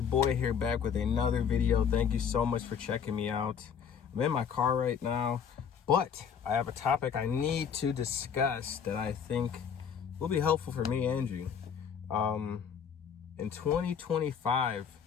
boy here, back with another video. Thank you so much for checking me out. I'm in my car right now, but I have a topic I need to discuss that I think will be helpful for me and you. In 2025,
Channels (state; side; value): quieter; right; 7.3 dB